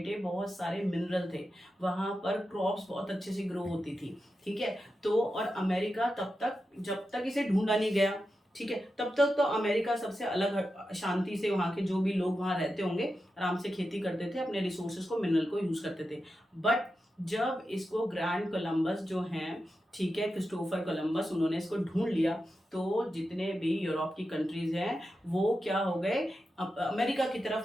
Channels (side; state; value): both; normal; correlation 0.90